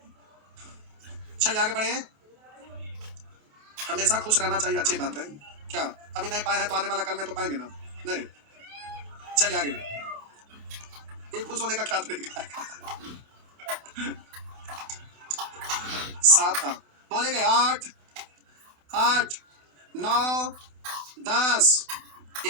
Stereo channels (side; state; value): left; late; 28 ms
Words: चलिए आगे बढ़े। हमेशा खुश रहना चाहिए, अच्छी बात है। क्या अभी नहीं पाए हैं तो आने वाला कल में तो पाएंगे ना, नहीं। चलिए आगे, ये खुश होने का क्या तरीका है। 7 था, बोलेंगे 8 8 9 10